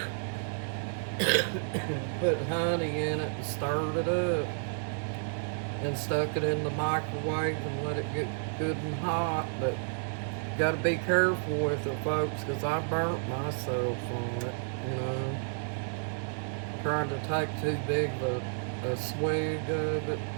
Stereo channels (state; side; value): silent; left; 57 dB below the other